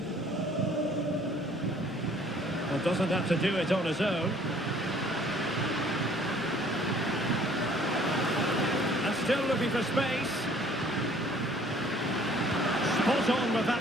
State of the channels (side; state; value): left; noise; rumble, 29 dB below the sound